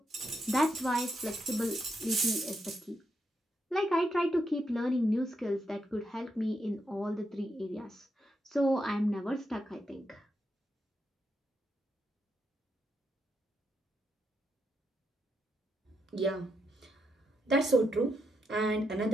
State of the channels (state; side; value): normal; both; correlation 0.82